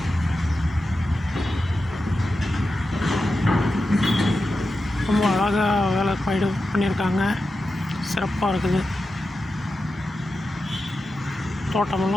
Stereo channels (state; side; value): normal; both; correlation 0.91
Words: ரொம்ப அழகாக வேலை பண்ணியிருக்காங்க. சிறப்பாக இருக்குது.